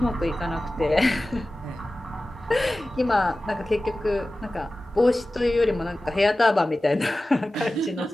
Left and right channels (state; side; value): normal; both; correlation 0.96